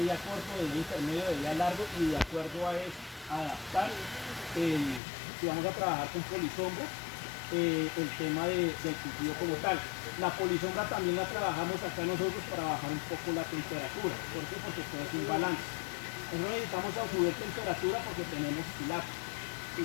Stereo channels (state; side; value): drops out; right; at 5.0 s